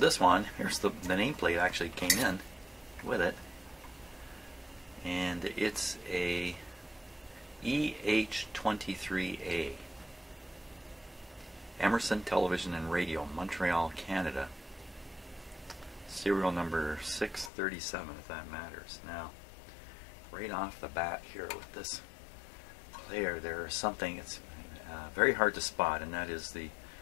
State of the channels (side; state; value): right; drops out; at 17.5 s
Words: one, here's the nameplate actually came in with it. And it's a EH23A. Emerson television and radio, Montreal, Canada. Serial number 637, if that matters. Now, right off the bat here with this player, there's something that's very hard to spot, and that is the